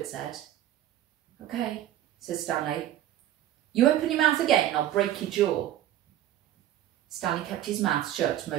said. "Okay," said Stanley. "You open your mouth again and I'll break your jaw." Stanley kept his mouth shut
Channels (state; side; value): quieter; left; 12.5 dB